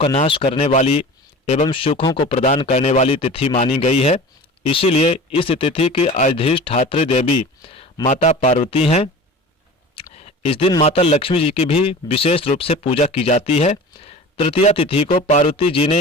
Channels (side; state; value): both; normal; correlation 0.38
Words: नाश करने वाली एवं सुखों को प्रदान करने वाली तिथि मानी गई है। इसीलिए इस तिथि की अधिष्ठात्री देवी माता पार्वती हैं। इस दिन माता लक्ष्मी जी की भी विशेष रूप से पूजा की जाती है। तृतीया तिथि को पार्वती जी